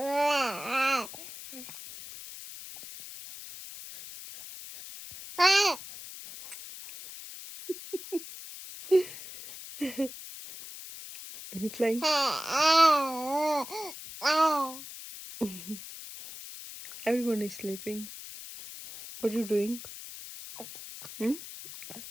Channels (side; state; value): left; noise; hiss, 13 dB below the sound